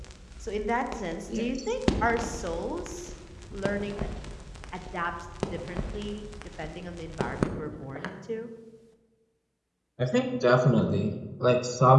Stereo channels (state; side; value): identical; both; correlation 1.00